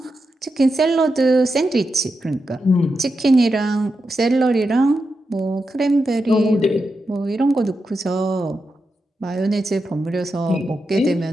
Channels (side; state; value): both; normal; correlation 0.88